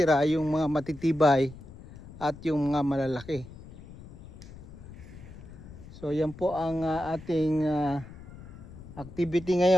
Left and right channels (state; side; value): noise; left; rumble, 16 dB below the sound